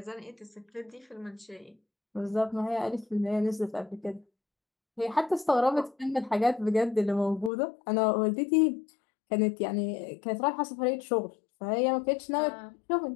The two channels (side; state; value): right; drops out; at 7.5 s